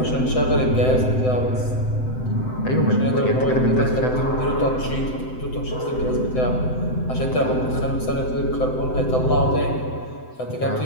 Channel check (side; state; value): right; late; 7.8 ms